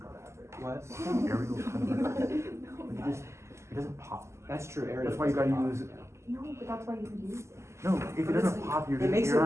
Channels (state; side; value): late; left; 0.13 ms